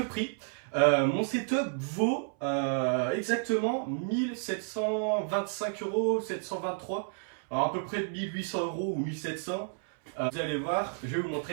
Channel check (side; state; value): left; silent; 57 dB below the other